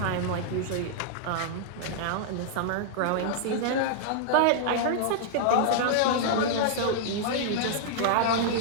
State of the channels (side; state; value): both; different; correlation -0.01